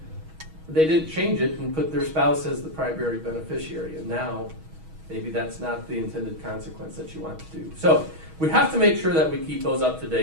They didn't change it and put their spouse as the primary beneficiary. And now maybe that's not the intended consequence that you want to do. So we have to make sure that we keep those up to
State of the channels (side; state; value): left; late; 6.3 ms